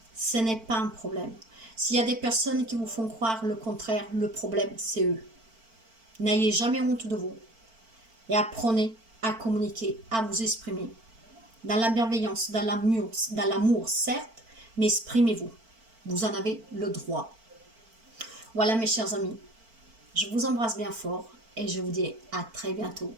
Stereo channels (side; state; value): left; late; 4.5 ms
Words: ce n'est pas un problème. S'il y a des personnes qui vous font croire le contraire, le problème, c'est eux. N'ayez jamais honte de vous. Et apprenez à communiquer, à vous exprimer. Dans la bienveillance, dans l'amour, certes, mais exprimez-vous. Vous en avez le droit. Voilà mes chers amis, je vous embrasse bien fort et je vous dis à très bientôt.